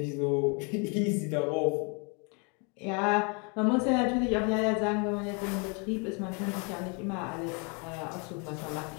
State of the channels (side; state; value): right; quieter; 34.2 dB